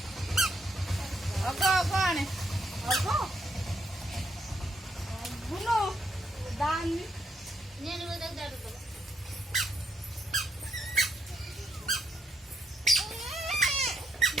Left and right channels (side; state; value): both; normal; correlation 0.77